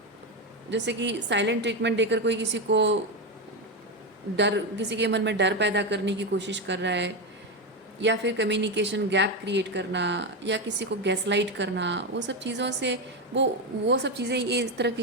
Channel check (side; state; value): both; normal; correlation 0.11